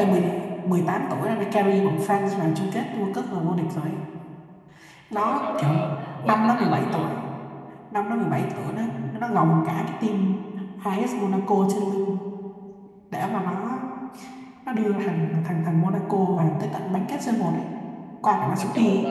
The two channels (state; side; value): identical; both; correlation 1.00